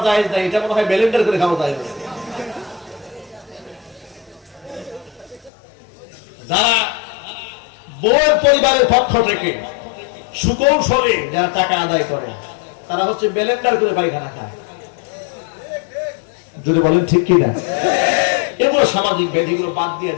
যায় না, এটা মনে হয় ব্লেন্ডার করে খাওয়া যায়। যারা বউয়ের পরিবারের পক্ষ থেকে সুকৌশলে যারা টাকা আদায় করে, তারা হচ্ছে ব্লেন্ডার করে পায়খানা খায়। যদি বলেন ঠিক কিনা? এগুলো সামাজিক ব্যাধিগুলো বাদ দিয়ে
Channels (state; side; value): drops out; right; at 5.5 s